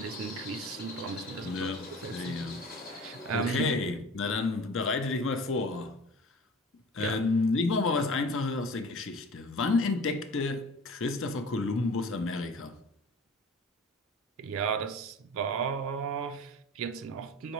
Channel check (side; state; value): both; normal; correlation 0.41